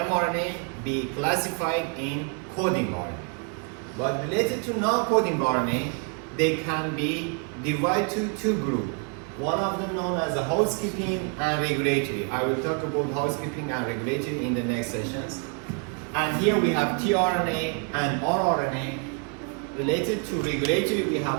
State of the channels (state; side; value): quieter; left; 38.4 dB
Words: be classified in coding RNA. But related to non-coding RNA, they can be divided to two groups. One of them known as a housekeeping and regulatory. I will talk about housekeeping and regulatory in the next sessions. And here we have tRNA and rRNA. Related to regulatory, we